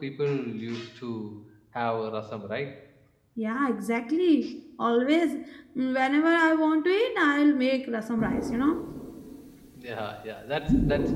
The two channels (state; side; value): identical; both; correlation 1.00